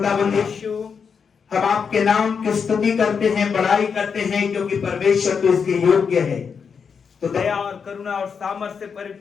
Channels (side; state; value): right; quieter; 6.2 dB